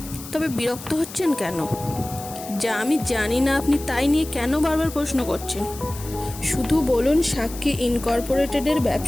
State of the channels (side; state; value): left; noise; hiss, 14 dB below the sound